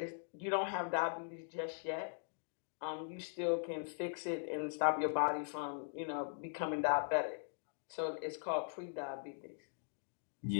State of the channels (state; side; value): silent; right; digital silence